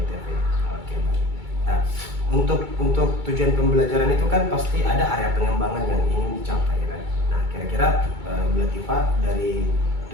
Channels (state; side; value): late; left; 2.3 ms